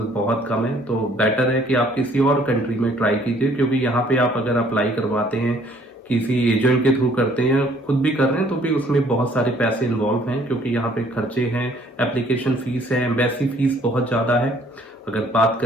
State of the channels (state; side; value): normal; both; correlation 0.60